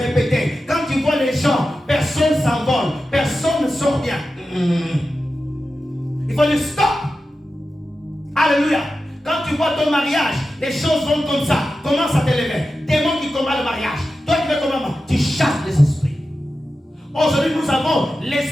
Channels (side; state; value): both; normal; correlation 0.92